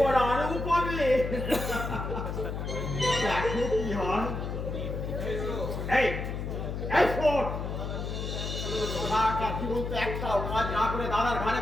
আরো পাবে, দেখো কি হয়। এই এই শোন, সারাটা জীবন তো একটাও কাজ না করে দাদার ঘরে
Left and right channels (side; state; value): left; noise; hum, 4 dB below the sound